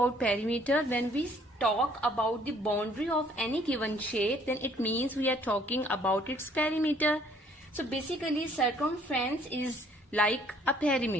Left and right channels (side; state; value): both; normal; correlation 0.61